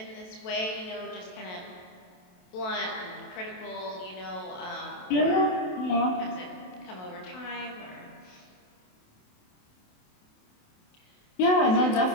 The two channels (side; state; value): right; late; 27 ms